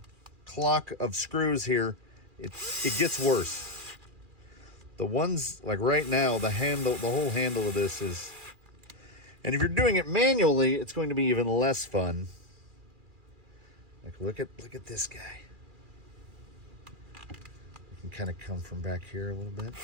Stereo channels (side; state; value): left; late; 2.4 ms